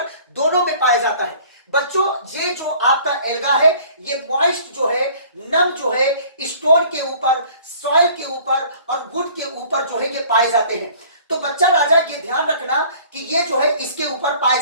दोनों में पाया जाता है। बच्चों ये जो आपका एल्गा है ये मॉइस्ट जो है, नम जो है, स्टोन के ऊपर, सॉइल के ऊपर और वुड के ऊपर जो है ये पाए जाते हैं। तो बच्चा राजा ये ध्यान रखना कि ये जो है इसके ऊपर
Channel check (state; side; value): inverted; both; correlation -0.51